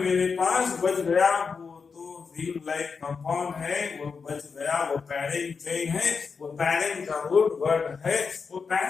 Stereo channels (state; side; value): quieter; right; 5.3 dB